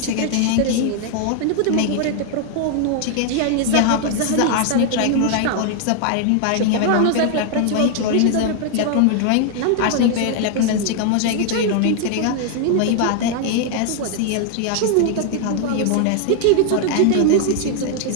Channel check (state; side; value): different; both; correlation 0.00